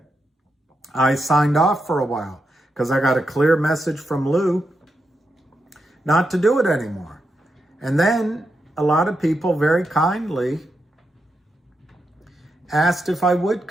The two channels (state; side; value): normal; both; correlation 0.85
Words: I signed off for a while because I got a clear message from Lou not to do it anymore. And then a lot of people very kindly asked if I would